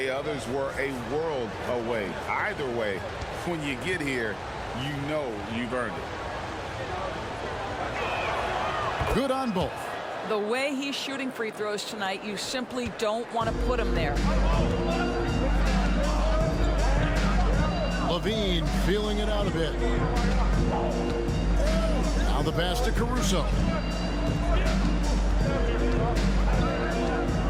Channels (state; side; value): identical; both; correlation 1.00